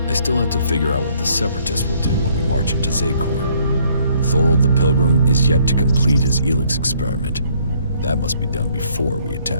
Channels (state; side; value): inverted; both; correlation -0.65